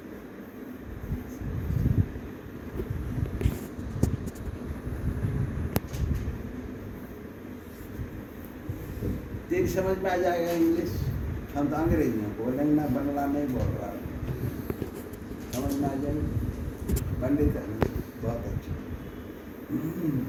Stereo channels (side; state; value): both; identical; correlation 1.00